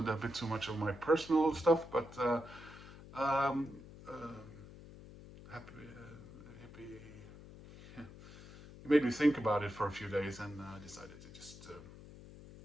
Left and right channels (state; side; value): noise; left; hum, 17 dB below the sound